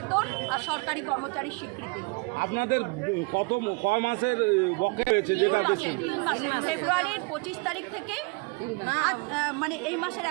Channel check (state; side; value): quieter; left; 30.3 dB